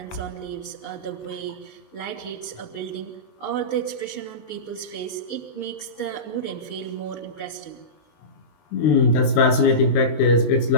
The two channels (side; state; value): right; late; 19 ms